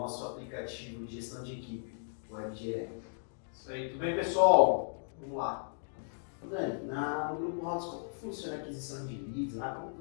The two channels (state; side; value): silent; right; digital silence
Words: aplicativo de gestão de equipe, o WebGR. Isso aí, tudo bem pessoal? Vamos lá. Dani, no Grupo House, como funciona a aquisição de leads? Como